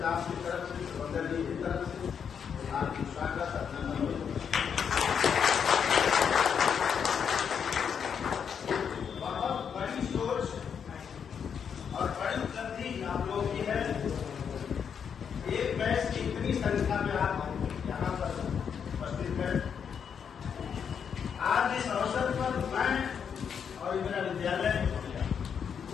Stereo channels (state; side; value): quieter; right; 7.3 dB